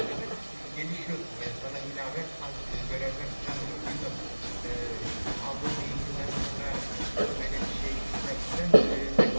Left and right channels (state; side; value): inverted; both; correlation -1.00